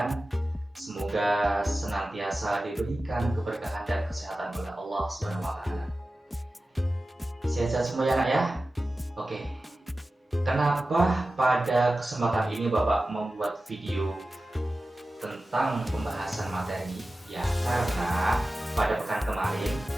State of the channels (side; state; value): both; normal; correlation 0.95